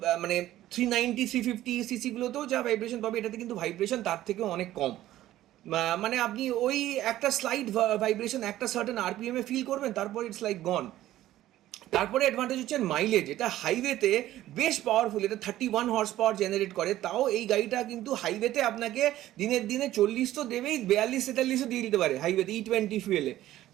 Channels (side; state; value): left; quieter; 14.2 dB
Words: মানে 390 350 সিসিগুলোতেও যা ভাইব্রেশন পাবে, এটাতে কিন্তু ভাইব্রেশন তার থেকেও অনেক কম। মানে আপনি ওই একটা স্লাইড ভাইব্রেশন একটা সার্টেন আরপিএমে ফিল করবেন, তারপর ইটস লাইক গন। তারপরে অ্যাডভান্টেজ হচ্ছে মাইলেজ, এটা হাইওয়েতে বেশ পাওয়ারফুল, এটা 31 হর্স পাওয়ার জেনারেট করে। তাও এই গাড়িটা কিন্তু হাইওয়েতে আপনাকে দিনের দিনে 40 তো দেবেই, 42-43ও দিয়ে দিতে পারে হাইওয়েতে E20 ফুয়েলে।